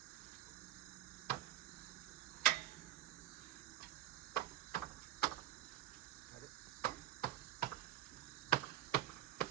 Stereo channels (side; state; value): left; quieter; 14.5 dB